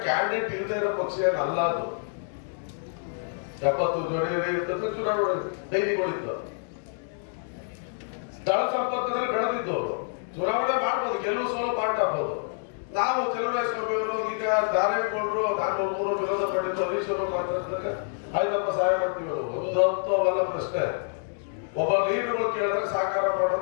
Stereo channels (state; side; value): silent; right; digital silence